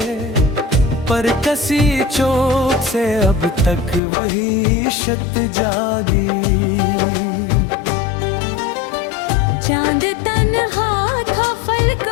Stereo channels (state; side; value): drops out; right; at 4.0 s